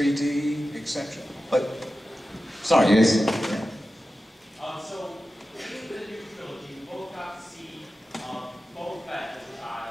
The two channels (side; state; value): both; normal; correlation 0.93